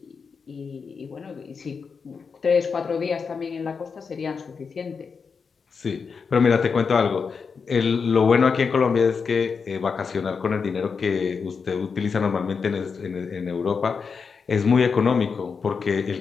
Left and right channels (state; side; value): quieter; right; 5.5 dB